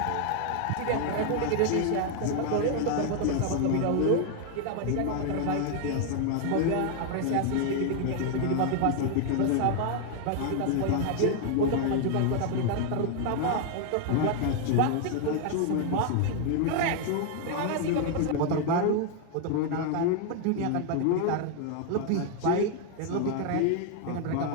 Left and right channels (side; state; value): both; different; correlation 0.00